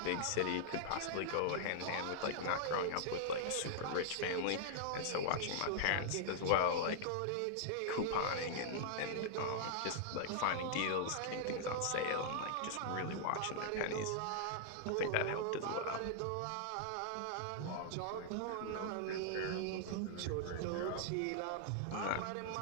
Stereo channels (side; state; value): both; different; correlation -0.01